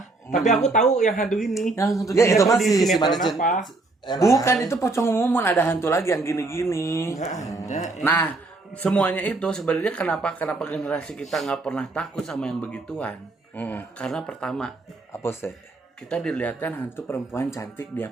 Tapi aku tahu yang hantu ini. yang hantu Ya, itu dia- mah Di si sinetron Manis apa? Bukan, itu pocong mumun, ada hantu lagi yang gini-gini. Ada. Nah, semuanya itu sebenarnya kenapa generasi kita nggak pernah takut sama yang begituan? Karena pertama, Apa sih? kita dilihatkan hantu perempuan cantik dia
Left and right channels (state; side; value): quieter; left; 3.3 dB